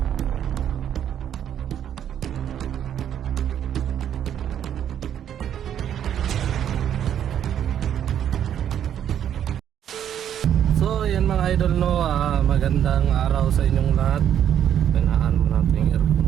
So yan mga idol no, magandang araw sa inyong lahat. Pinaan mo natin yung aircon.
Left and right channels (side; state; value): left; quieter; 9.8 dB